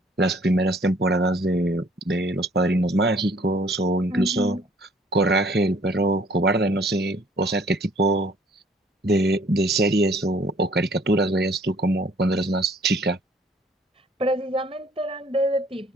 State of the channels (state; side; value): normal; both; correlation 0.58